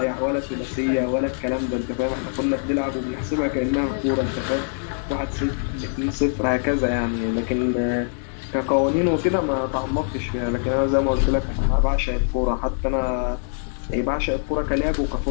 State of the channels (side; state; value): right; silent; 61 dB below the other